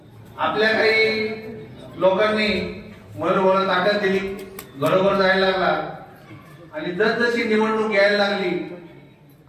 आपल्या काही लोकांनी मयूर भाऊला ताकद दिली, घरोघर जायला लागला आणि जसजशी निवडणूक यायला लागली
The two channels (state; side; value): identical; both; correlation 1.00